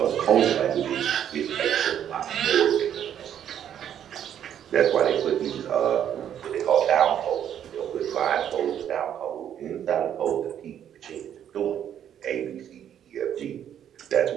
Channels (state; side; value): quieter; left; 9.8 dB